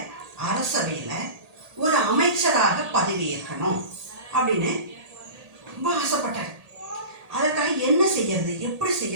அரசவையில் ஒரு அமைச்சராக பதவியேற்கணும் அப்படின்னு ரொம்ப ஆசைப்பட்டார். அதற்காக என்ன செய்யறது, எப்படி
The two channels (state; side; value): late; left; 1.8 ms